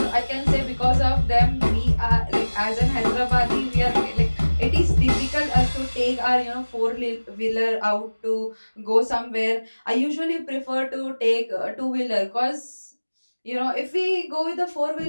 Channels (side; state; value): both; inverted; correlation -1.00